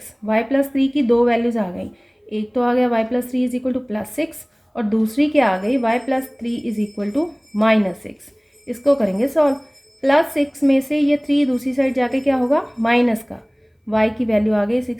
y प्लस 3 की दो वैल्यूज़ आ गई, एक तो आ गया y plus 3 is equal to plus 6 और दूसरी क्या आ गई y plus 3 is equal to -6। इसको करेंगे सॉल्व। प्लस 6 में से ये 3 दूसरी साइड जाके क्या होगा, माइनस का, y की वैल्यू आ गई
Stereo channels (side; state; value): both; identical; correlation 1.00